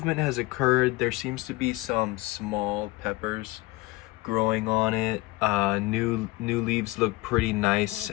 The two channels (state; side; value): quieter; right; 20.5 dB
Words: has occurred. There seems to be some small peppers growing on it. New leaves look pretty nice